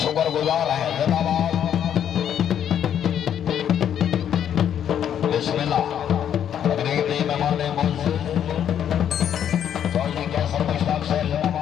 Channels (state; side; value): quieter; right; 9.5 dB